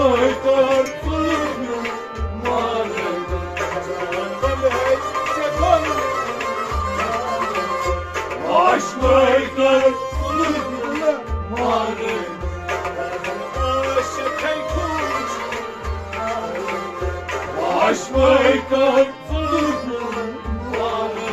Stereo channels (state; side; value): identical; both; correlation 1.00